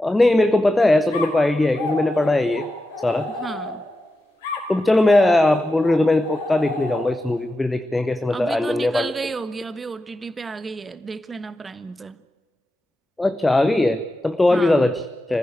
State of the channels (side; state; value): both; normal; correlation 0.90